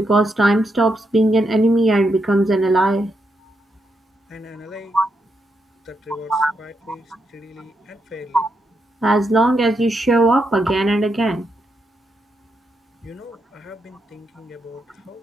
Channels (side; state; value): both; normal; correlation 0.82